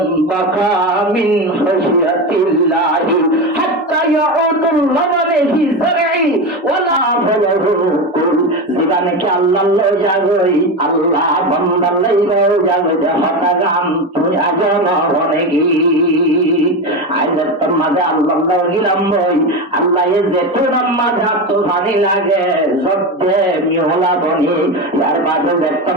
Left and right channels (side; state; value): both; normal; correlation 0.19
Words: বাকা মিন খাশিয়াতিল্লাহি হাত্তা ইয়াউদুল লাবানি ফি যারঈ ওয়ালা ফালাহু কুল জীবনে কি আল্লাহ লই যাগই আল্লাহ বান্দার লই যাগই হতা গাম তুই আজন হনেগি আইজার তোর মাঝে আল্লাহ গিলাম বই আল্লাহ এ যে তোর মাঝে তো ভানি লাগে সত্যে মিহলা বনি যার বাদে